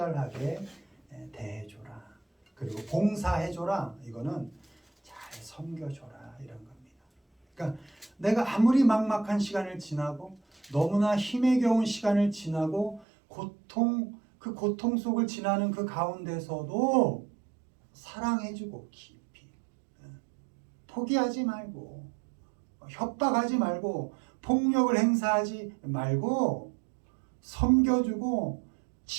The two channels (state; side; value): drops out; left; at 13.1 s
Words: 대해줘라. 그리고 봉사해줘라. 이거는 잘 섬겨줘라, 이런 겁니다. 그러니까 내가 아무리 막막한 시간을 지나고 너무나 힘에 겨운 시간을 지나고 그 고통 속을 지나는 그 가운데서도 사랑해주고 깊이 포기하지 말고 협박하지 말고 폭력을 행사하지 말고 섬겨주고